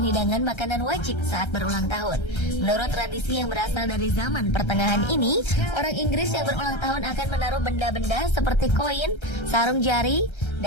hidangan makanan wajib saat berulang tahun. Menurut tradisi yang berasal dari zaman pertengahan ini, orang Inggris yang berulang tahun akan menaruh benda-benda seperti koin, sarung jari,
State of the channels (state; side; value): late; right; 1.3 ms